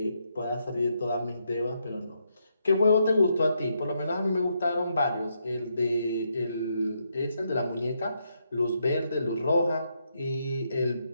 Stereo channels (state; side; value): inverted; both; correlation -0.79